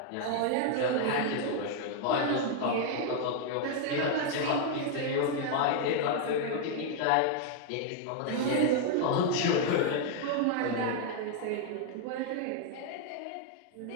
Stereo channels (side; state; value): both; different; correlation 0.00